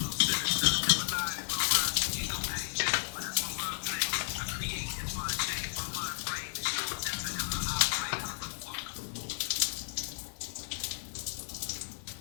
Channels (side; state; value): right; silent; digital silence